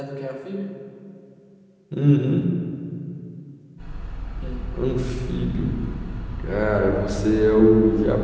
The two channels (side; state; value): both; identical; correlation 1.00